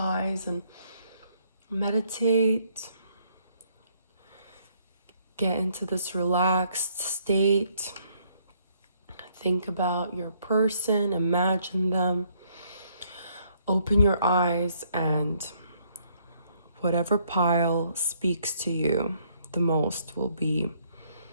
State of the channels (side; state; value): both; inverted; correlation -0.68